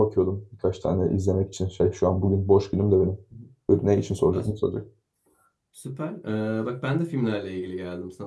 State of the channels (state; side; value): identical; both; correlation 1.00